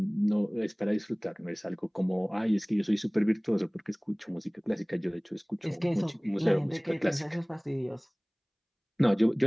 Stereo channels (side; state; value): both; identical; correlation 1.00